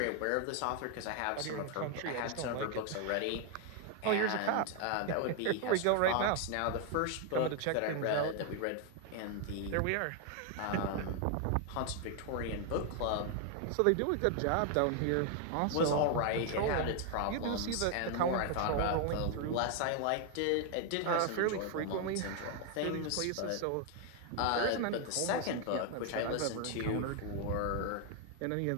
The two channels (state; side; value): different; both; correlation 0.00